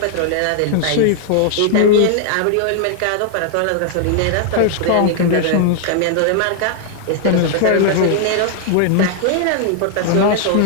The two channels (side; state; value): both; different; correlation 0.00